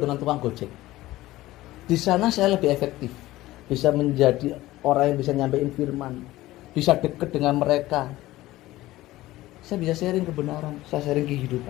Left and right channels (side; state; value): right; quieter; 16.9 dB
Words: dengan tukang gojek. Di sana saya lebih efektif. Bisa menjadi orang yang bisa nyampein firman. Bisa dekat dengan mereka. Saya bisa sharing kebenaran, saya sharing